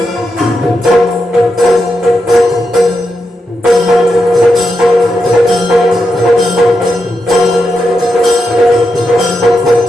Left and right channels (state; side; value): normal; both; correlation 0.85